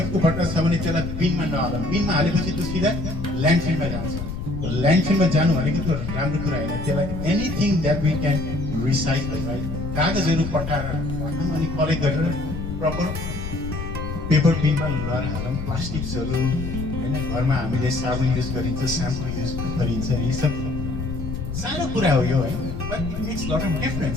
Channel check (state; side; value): noise; left; rumble, 7 dB below the sound